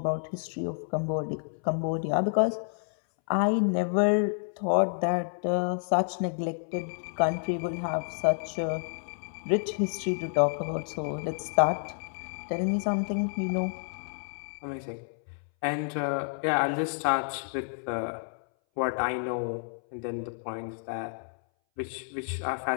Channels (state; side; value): silent; right; 58 dB below the other